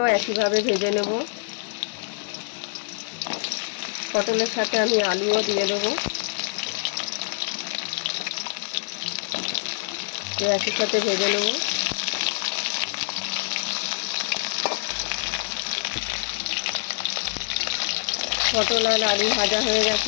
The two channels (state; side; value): silent; right; digital silence